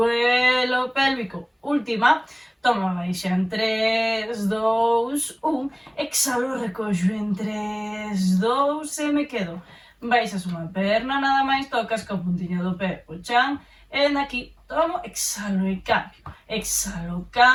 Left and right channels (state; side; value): identical; both; correlation 1.00